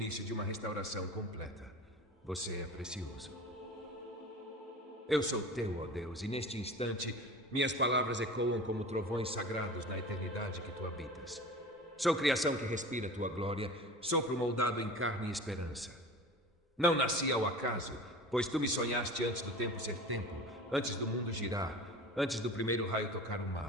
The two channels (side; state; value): both; normal; correlation 0.37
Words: de uma restauração completa. Você é precioso. Eu sou teu, ó Deus, e neste instante minhas palavras ecoam como trovões sagrados na eternidade que tu habitas. Sou criação que respira tua glória, sopro moldado em carne e esperança. Não nasci ao acaso, pois tu me sonhaste antes do tempo ser tempo, antes do mundo girar, antes do primeiro raio tocar o